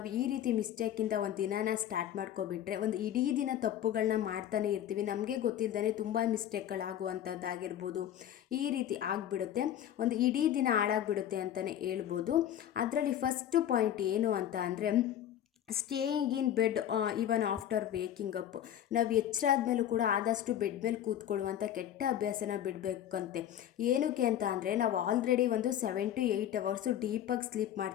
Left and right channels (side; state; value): right; quieter; 10.9 dB